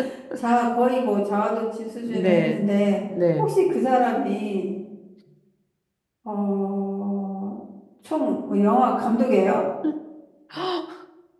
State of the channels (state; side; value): identical; both; correlation 1.00